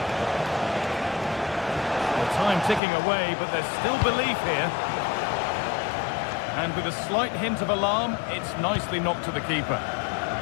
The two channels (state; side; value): drops out; right; at 2.8 s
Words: The time ticking away, but there's still belief here. And with a slight hint of alarm, it's nicely knocked to the keeper.